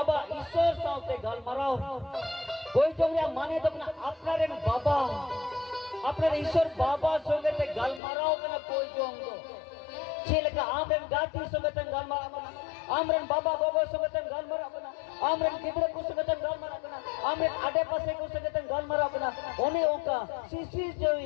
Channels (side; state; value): right; drops out; at 8.0 s